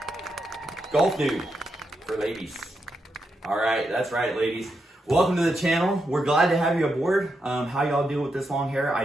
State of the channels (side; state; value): both; normal; correlation 0.84